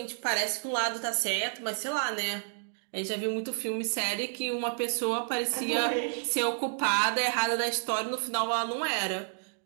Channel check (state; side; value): silent; left; digital silence